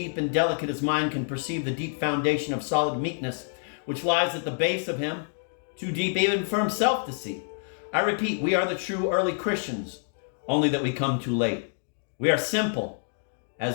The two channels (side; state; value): right; silent; digital silence